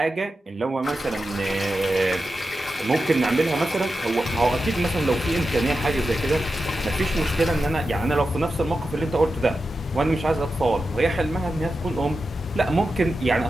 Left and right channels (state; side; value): normal; both; correlation 0.90